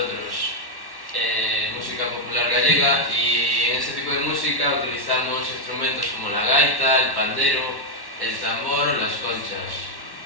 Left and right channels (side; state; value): right; late; 1.1 ms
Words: música popular gallega, y en ese tipo de música utilizamos instrumentos como la gaita, el pandero, el tambor o las conchas.